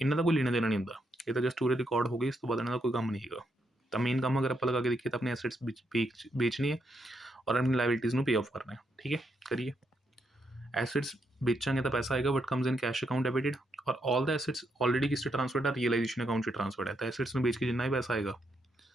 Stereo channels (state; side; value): normal; both; correlation 0.79